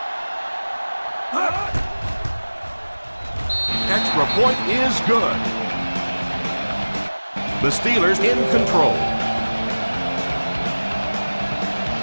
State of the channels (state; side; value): inverted; both; correlation -1.00